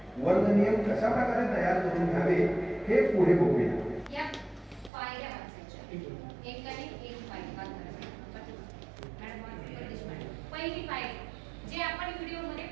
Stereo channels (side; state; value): left; drops out; at 4.9 s